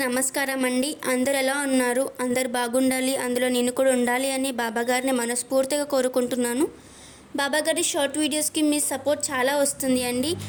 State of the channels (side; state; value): both; identical; correlation 1.00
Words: నమస్కారం అండి. అందరు ఎలా ఉన్నారు? అందరు బాగుండాలి, అందులో నేను కూడా ఉండాలి అని బాబాగారిని మనస్ఫూర్తిగా కోరుకుంటున్నాను. బాబాగారి షార్ట్ వీడియోస్కి మీ సపోర్ట్ చాలా వస్తుంది అండి.